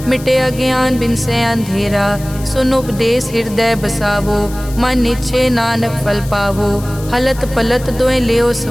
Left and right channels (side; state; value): left; noise; hiss, 17 dB below the sound